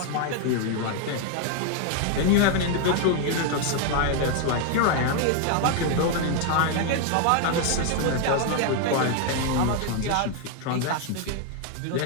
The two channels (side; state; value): both; different; correlation 0.00